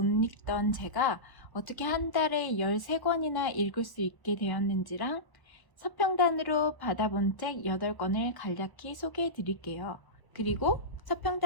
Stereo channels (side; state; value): right; late; 1.0 ms